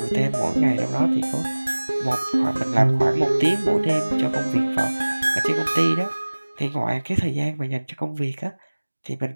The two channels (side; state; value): both; inverted; correlation -1.00